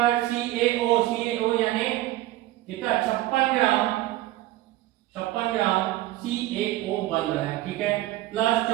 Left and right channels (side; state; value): left; quieter; 16.0 dB